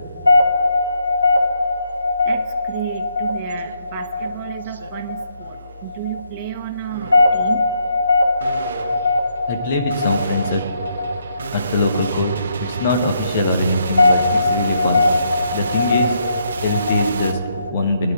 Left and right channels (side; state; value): both; inverted; correlation -0.76